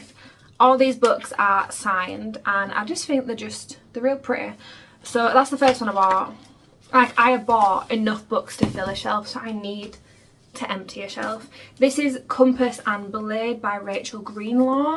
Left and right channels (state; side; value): identical; both; correlation 1.00